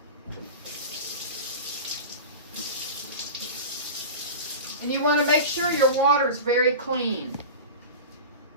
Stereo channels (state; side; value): inverted; both; correlation -0.30